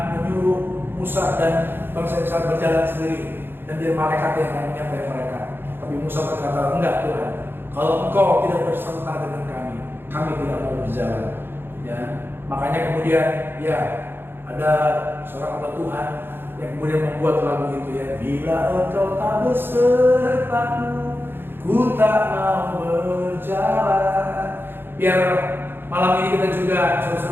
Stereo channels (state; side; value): late; left; 0.10 ms